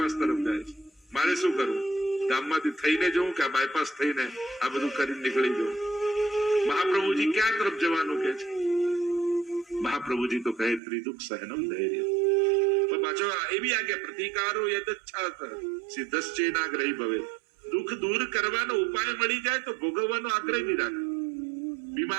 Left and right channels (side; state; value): left; drops out; at 10.8 s